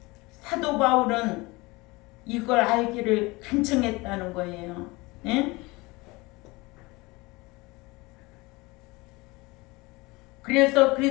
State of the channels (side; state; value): right; quieter; 23.4 dB